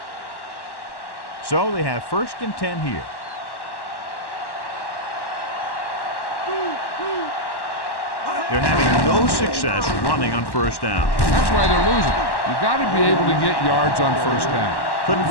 So they have 1st and 10 here. They're having no success running on 1st down. That's why they're losing. You got to be able to get yards on 1st down. Couldn't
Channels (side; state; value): right; late; 1.1 ms